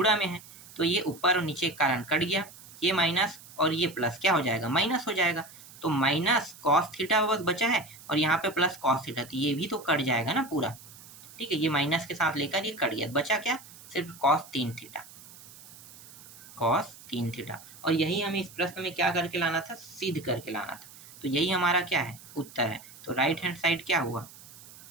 में है, तो ये ऊपर और नीचे के कारण कट गया, ये माइनस और ये प्लस क्या हो जाएगा, माइनस हो जाएगा, तो माइनस कॉस थीटा बस बचा है और यहाँ पे प्लस कॉस थीटा, तो ये भी तो कट जाएगा ना पूरा। ठीक है, ये माइनस के साथ लेकर ये कट गया, बचा क्या, सिर्फ कॉस 3 थीटा, कॉस 3 थीटा। और यही हमें इस प्रश्न में क्या करके लाना था, सिद्ध करके लाना था, तो यही हमारा क्या है, उत्तर है। तो राइट हैंड साइड क्या हुआ,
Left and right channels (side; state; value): right; noise; hiss, 19 dB below the sound